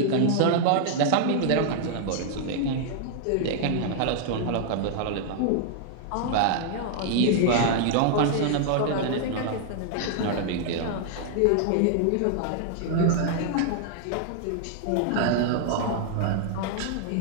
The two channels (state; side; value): different; both; correlation -0.01